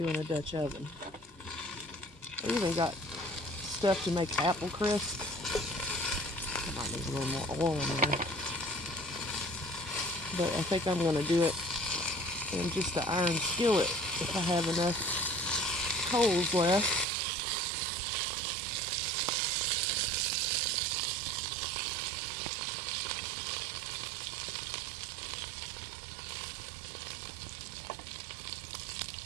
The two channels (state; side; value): drops out; left; at 17.1 s